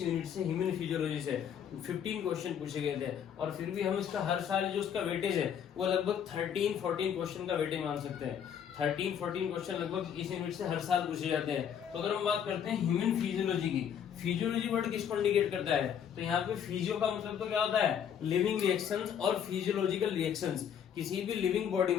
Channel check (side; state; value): right; quieter; 8.5 dB